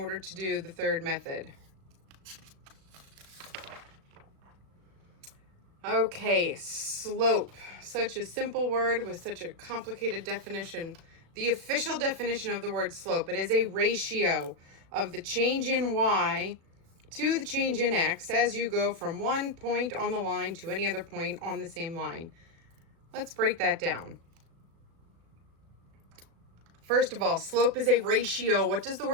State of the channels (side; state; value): left; late; 36 ms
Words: to do the third method. Okay, slope. Such a simple word with such a complicated definition. The official definition of the word slope, it is a ratio of the change in y to the change in x as you go from one point on the line to any other point on the same line. Let's break that down. First of all, slope is a ratio. What does the